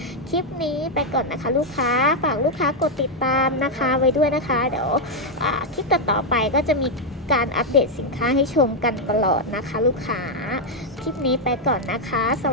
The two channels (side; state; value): both; normal; correlation 0.00